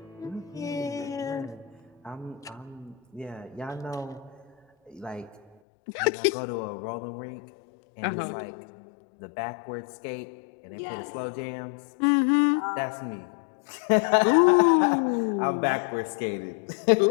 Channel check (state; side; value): drops out; right; at 5.6 s